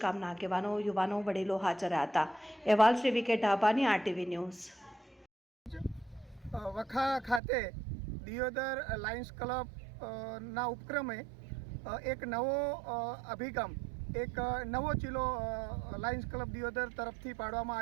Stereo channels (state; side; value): drops out; left; at 7.4 s